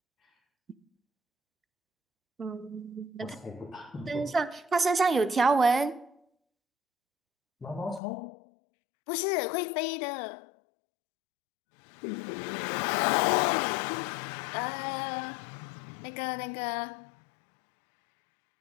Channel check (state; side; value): drops out; right; at 8.0 s